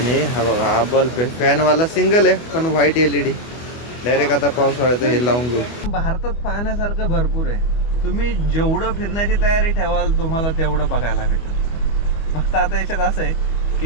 हा बघा, हा बल्ब आहे, फॅनवाला सिंगल आहे पण व्हाईट LED. डायरेक्ट आता पावसाळ्याचं हे लावून घेऊ. भारतात पाहण्यासारखं भरपूर आहे, तुम्ही जेवढं फिरण्याची तयारी ठेवाल तुम्हाला तेवढं बघायला भेटेल. फक्त आता याच्यात असं आहे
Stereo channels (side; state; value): right; late; 24 ms